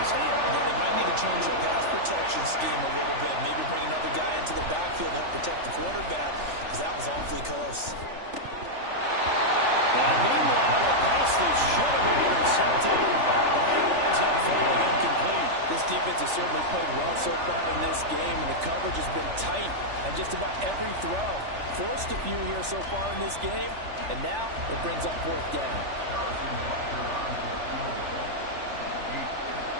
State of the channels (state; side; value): late; left; 3.4 ms